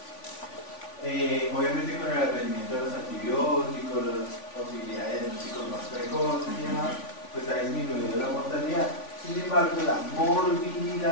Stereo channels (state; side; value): late; right; 3.5 ms